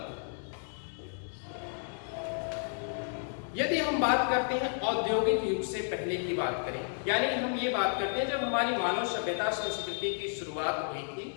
यदि हम बात करते हैं औद्योगिक युग से पहले की बात करें, यानी हम ये बात करते हैं जब हमारी मानव सभ्यता संस्कृति की शुरुआत हुई थी,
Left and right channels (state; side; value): silent; right; digital silence